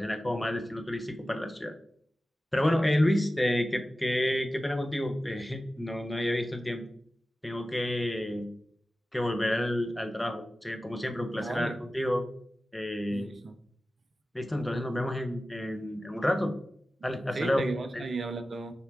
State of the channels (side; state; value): both; normal; correlation 0.95